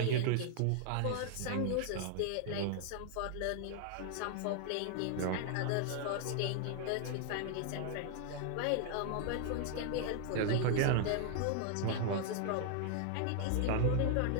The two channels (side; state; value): both; different; correlation 0.00